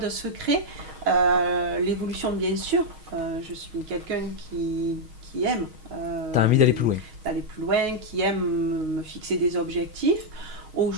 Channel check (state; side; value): late; left; 6.4 ms